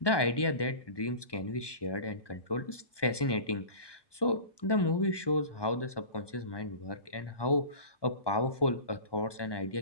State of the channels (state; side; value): late; right; 1.2 ms